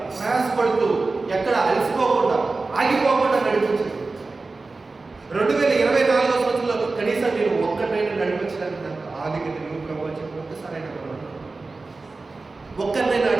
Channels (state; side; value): quieter; left; 3.7 dB